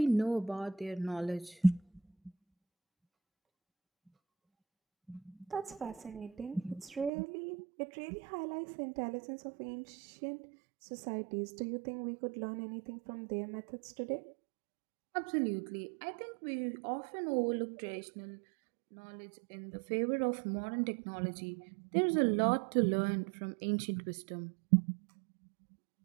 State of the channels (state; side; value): drops out; left; at 7.1 s